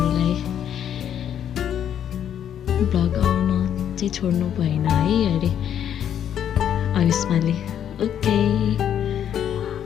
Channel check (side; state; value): right; quieter; 9.6 dB